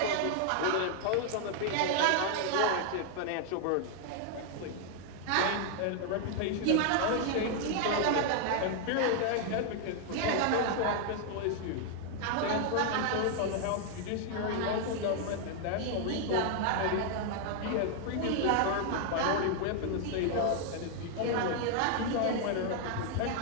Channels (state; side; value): different; both; correlation 0.00